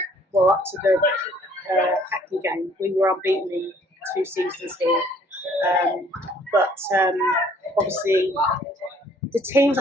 up to the Hackney game, we were unbeaten in 2 seasons here. But obviously, the teams,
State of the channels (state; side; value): normal; both; correlation 0.59